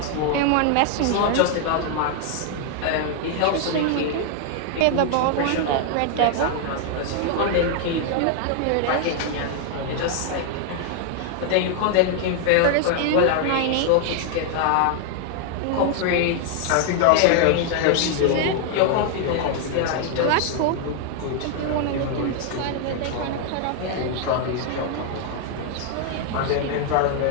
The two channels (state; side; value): different; both; correlation 0.00